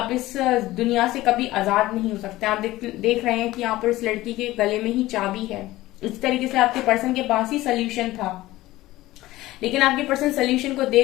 इस दुनिया से कभी आजाद नहीं हो सकते। आप देख रहे हैं कि यहाँ पर इस लड़की के गले में ही चाबी है। इस तरीके से आपके पर्सन के पास ही सोल्यूशन था, लेकिन आपके पर्सन सोल्यूशन को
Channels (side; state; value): right; quieter; 17.2 dB